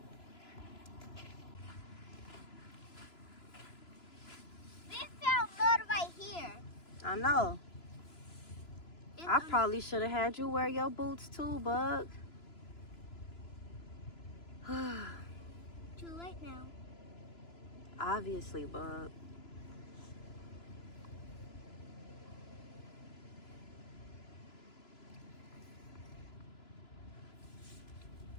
We found mud right here. I know. I probably should have had you wear your boots too, Bug. Too late now. Obviously, Bug.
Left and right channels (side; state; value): right; late; 3.0 ms